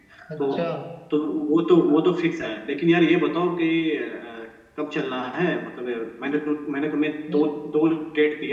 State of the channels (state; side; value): identical; both; correlation 1.00